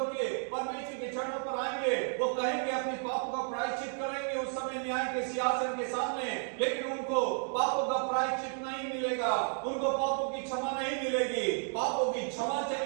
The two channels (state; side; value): silent; left; 56 dB below the other